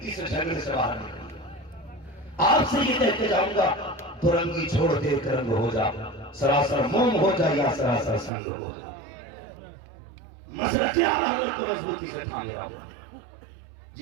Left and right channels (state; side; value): drops out; left; at 8.3 s